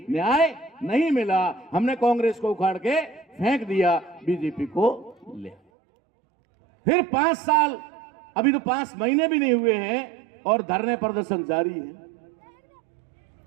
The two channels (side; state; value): left; drops out; at 5.6 s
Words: न्याय नहीं मिला। हमने कांग्रेस को उखाड़ के फेंक दिया, बीजेपी को ले। फिर 5 साल, अभी तो 5 महीने भी नहीं हुए हैं और धरने प्रदर्शन जारी है।